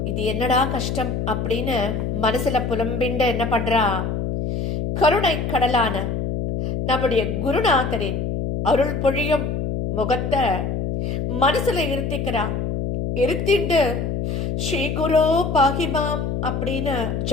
இது என்னடா கஷ்டம் அப்படின்னு மனசுல புலம்பிண்டு என்ன பண்றா, கருணை கடலான நம்முடைய குருநாதரின் அருள் பொழியும் முகத்தை மனசுல இருத்திக்கிறா. இருத்திண்டு ஸ்ரீ குரு பாகிமாம் அப்படின்னு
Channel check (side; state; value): left; noise; hum, 2 dB below the sound